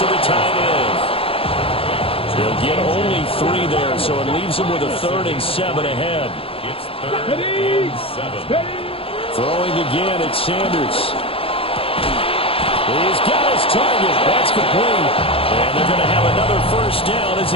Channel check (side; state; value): right; late; 0.27 ms